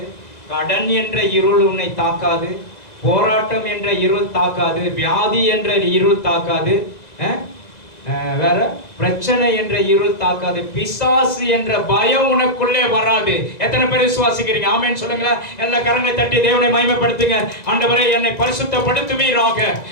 கடன் என்ற இருள் உன்னை தாக்காது, போராட்டம் என்ற இருள் தாக்காது, வியாதி என்ற இருள் தாக்காது, வேற பிரச்சனை என்ற இருள் தாக்காது, பிசாசு என்ற பயம் உனக்குள்ளே வராது. எத்தனை பேர் விசுவாசிக்கிறீங்க? ஆமென் சொல்லுங்களேன். எல்லா கரங்களை தட்டி தேவனை மகிமைப்படுத்துங்க. ஆண்டவரே, என்னை பரிசுத்தப்படுத்துவீராக,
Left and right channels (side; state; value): right; late; 2.0 ms